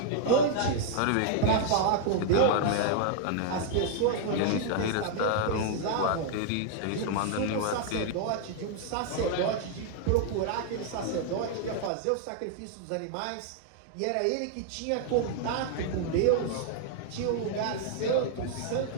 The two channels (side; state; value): both; different; correlation 0.00